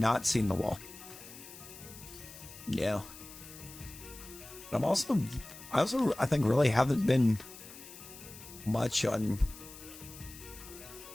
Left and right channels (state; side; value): noise; left; hiss, 16 dB below the sound